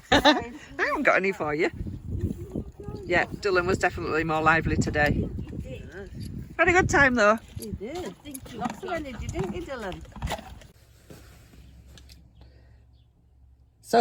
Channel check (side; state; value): both; identical; correlation 1.00